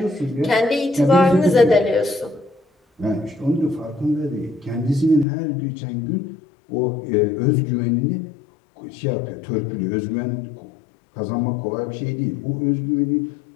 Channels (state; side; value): drops out; right; at 5.2 s